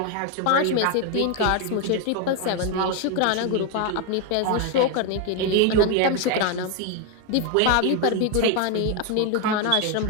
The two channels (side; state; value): both; different; correlation 0.01